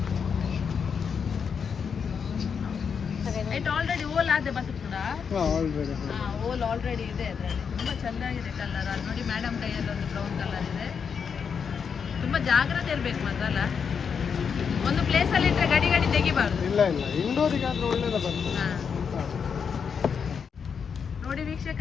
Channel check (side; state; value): right; quieter; 6.5 dB